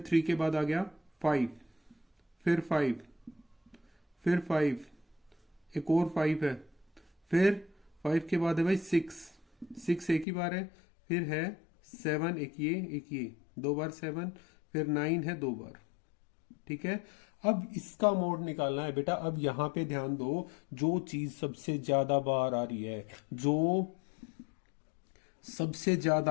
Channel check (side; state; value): right; drops out; at 10.2 s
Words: 3 के बाद आ गया 5, फिर 5, फिर 5, एक और 5 है। फिर 5 के बाद है भाई 6 एक ही बार है। फिर है 7, एक ये 2 बार 7। फिर 9 है 2 बार। ठीक है, अब इसका मोड निकालना है बेटा। अब यहां पे ध्यान दो, जो चीज सबसे ज्यादा बार आ रही है, जो सबसे